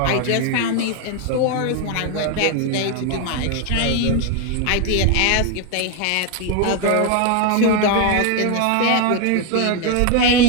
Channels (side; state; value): both; different; correlation 0.01